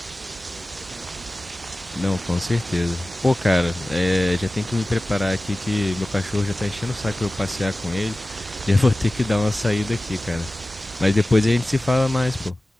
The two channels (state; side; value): normal; both; correlation 0.97